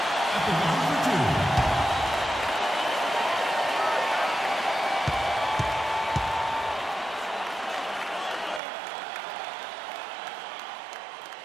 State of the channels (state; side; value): drops out; left; at 8.6 s